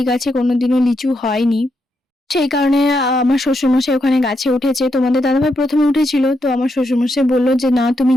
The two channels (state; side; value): normal; both; correlation 0.81